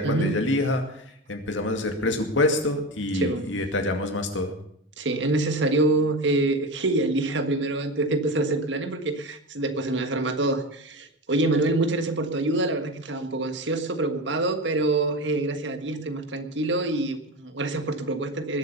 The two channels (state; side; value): normal; both; correlation 0.23